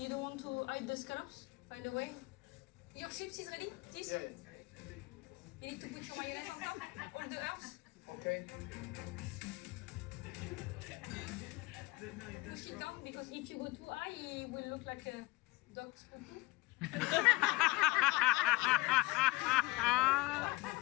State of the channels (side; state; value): right; quieter; 21.9 dB